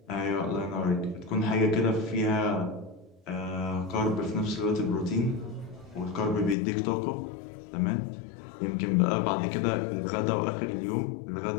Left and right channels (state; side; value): drops out; right; at 6.6 s